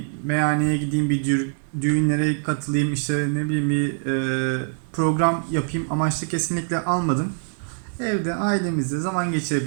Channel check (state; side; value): silent; left; 63 dB below the other